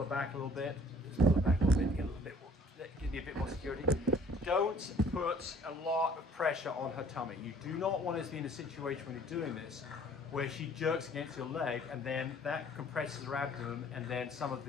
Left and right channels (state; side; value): normal; both; correlation 0.55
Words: back a little bit, just pull her back a little bit, get a little bit more, give me a bit more security. Don't put a lot of pressure on her tummy. You do not want to be in a situation when you're doing this where she jerks against your leg and then that compresses her abdomen and then some of